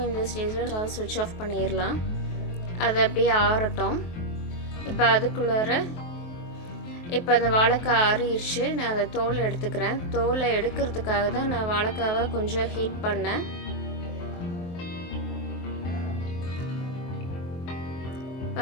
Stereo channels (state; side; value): late; right; 23 ms